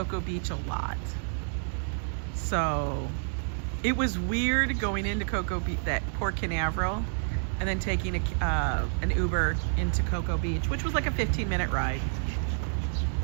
Beach a lot. So it was weird going into Cocoa Beach, that Port Canaveral, and then taking an Uber into Cocoa Beach, which was like a 15-minute ride.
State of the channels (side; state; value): left; silent; digital silence